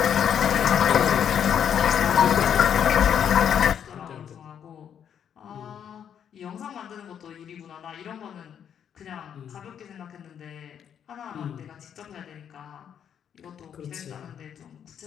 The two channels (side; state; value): right; quieter; 8.6 dB